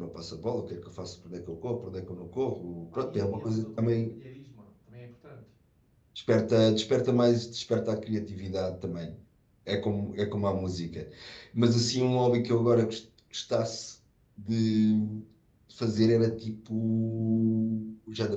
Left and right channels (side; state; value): both; identical; correlation 1.00